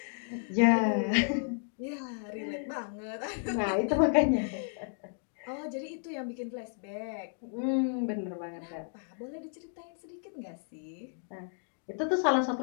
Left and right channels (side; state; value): right; silent; 56 dB below the other